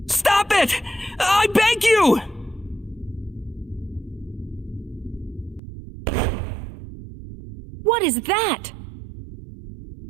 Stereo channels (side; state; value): left; drops out; at 5.6 s